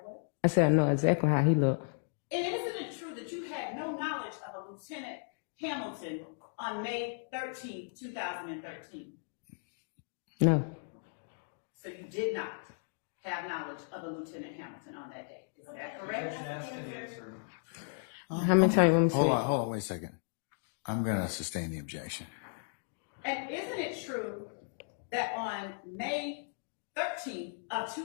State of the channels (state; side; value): silent; right; digital silence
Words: what? I said I know exactly how he looked. And isn't it true that you had no knowledge of a Lieutenant Hamilton on May 13, 2013? No. So you did not have knowledge of a Lieutenant Hamilton on that day. Is that correct? Objection, asked and answered. How many times you want me to say? Hold on, wait a second. I'm gonna sustain the objection. And isn't it true that on May 13th of